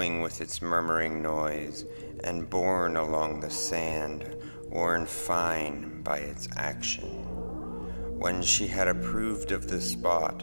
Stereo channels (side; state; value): both; inverted; correlation -1.00